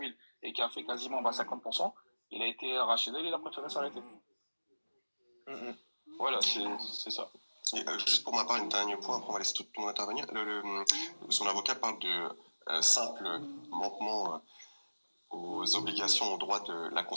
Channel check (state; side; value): inverted; both; correlation -1.00